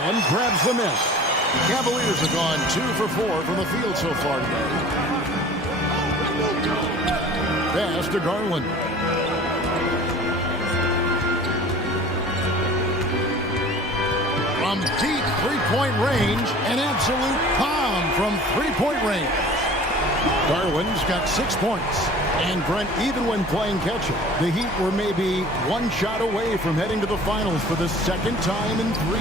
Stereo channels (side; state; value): both; normal; correlation 0.45